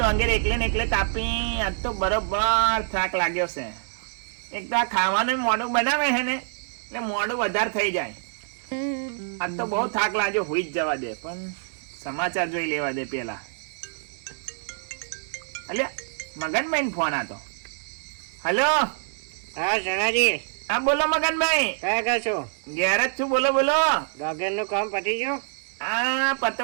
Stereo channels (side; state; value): left; silent; 61 dB below the other